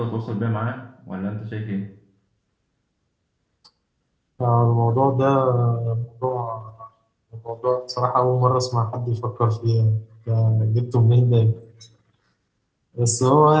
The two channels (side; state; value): both; identical; correlation 1.00